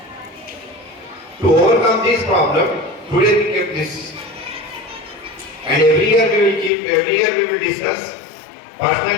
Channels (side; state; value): right; drops out; at 6.7 s